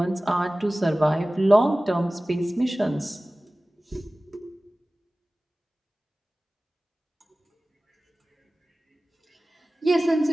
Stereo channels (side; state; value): both; normal; correlation 0.97